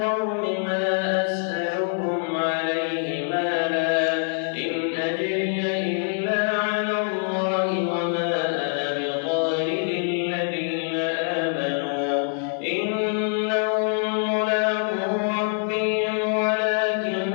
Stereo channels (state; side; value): silent; right; 59 dB below the other